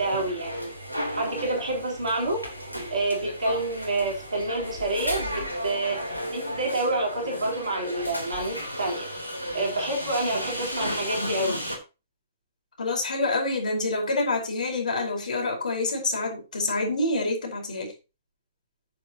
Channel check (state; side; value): inverted; both; correlation -0.57